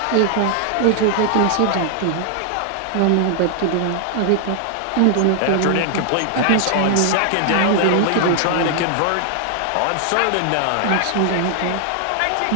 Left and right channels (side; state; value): both; different; correlation 0.00